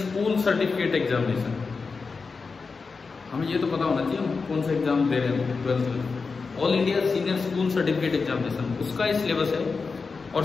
certificate examination. हमें ये तो पता होना चाहिए हम कौन सा एग्जाम दे रहे हैं 12th में। All India senior school certificate examination, उसका ये सिलेबस है। और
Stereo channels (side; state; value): right; quieter; 4.6 dB